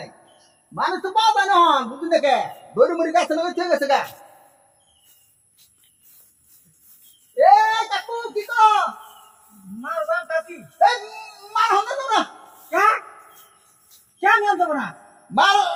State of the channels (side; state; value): both; identical; correlation 1.00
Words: মানুষ তো পাওয়া যায় না হন বুঝলি দেখে দড়ি মুড়ি গাছে লগে ঠিক আছে গা এ কাকু কি কো মার বান কাকি এ মার হন না কা কেন যাব না মার